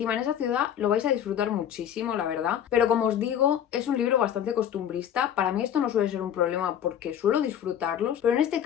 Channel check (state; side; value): quieter; right; 9.6 dB